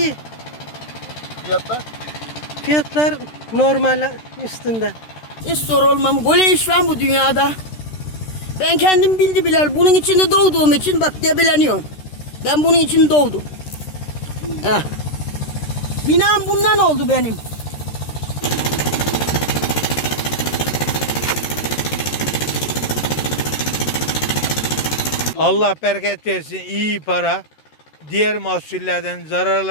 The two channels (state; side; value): late; right; 13 ms